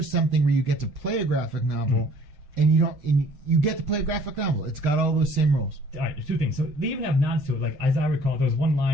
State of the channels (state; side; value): late; left; 6.6 ms